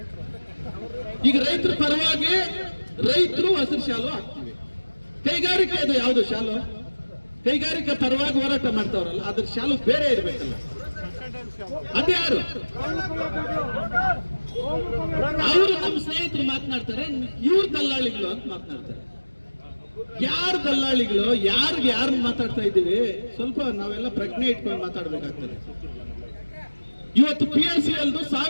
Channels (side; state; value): both; inverted; correlation -1.00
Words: ಈಗ ರೈತರ ಪರವಾಗಿ ರೈತರು ಹಸಿರು ಶಾಲು ಹಾಕ್ತೀವಿ. ಕೈಗಾರಿಕೆ ಅದು ಯಾವುದು ಶಾಲು? ಕೈಗಾರಿಕೆ ಪರವಾಗಿ ಹೋರಾಟ ಮಾಡ್ತಾವ್ರಲ್ಲ, ಅದ್ರ ಶಾಲು ಬೇರೆ ಇರ್ಬೇಕಲ್ಲ. ಅದ್ಯಾರು? ಅವರು ನಮ್ಮ ಸ್ನೇಹಿತರು ಮಾತನಾಡ್ತಾರೆ, ಇವ್ರ ದಲ್ಲಾಳಿಗಳು ಅಂತ ಮಾತನಾಡ್ತಾರೆ. ಯಾರು ದಲ್ಲಾಳಿಗಳು? ಯಾರು ಮಾತಾಡ್ತಾ ಇದ್ದೀವಿ? ಸ್ವಲ್ಪ ನಾವೆಲ್ಲ ಪ್ರಜ್ಞೆ ಇಟ್ಕೊಂಡು ಮಾತಾಡ್ಬೇಕಾಗ್ತದೆ. ಇವತ್ತು PSCL